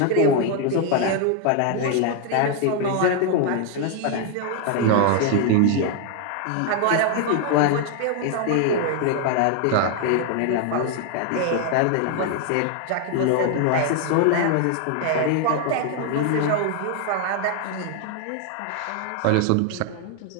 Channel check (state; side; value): different; both; correlation 0.00